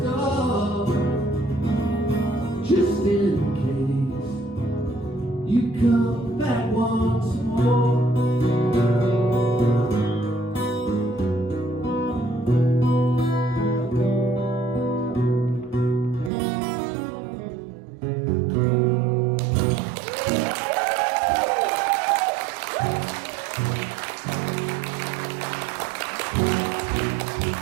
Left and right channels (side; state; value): left; drops out; at 16.3 s